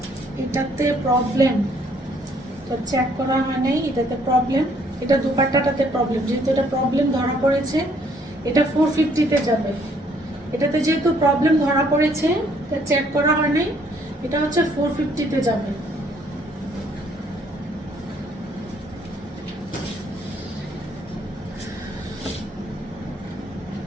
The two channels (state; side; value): normal; both; correlation 0.65